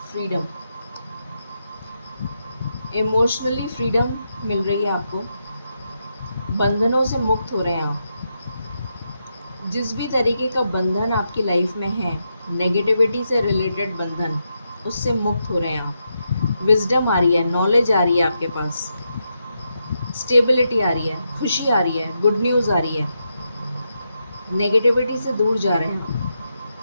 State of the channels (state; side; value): inverted; both; correlation -0.84